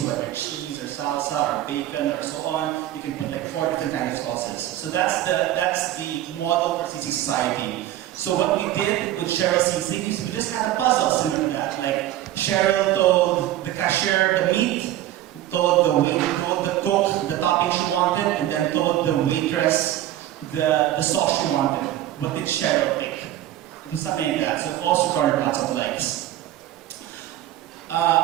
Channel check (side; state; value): left; quieter; 13.5 dB